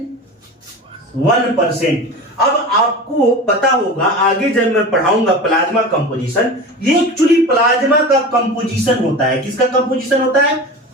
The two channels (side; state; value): both; normal; correlation 0.31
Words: 1%। अब आपको पता होगा आगे जब मैं पढ़ाऊंगा प्लाज्मा कंपोजिशन, ये एक्चुअली प्लाज्मा का कंपोजिशन होता है। किसका कंपोजिशन होता है?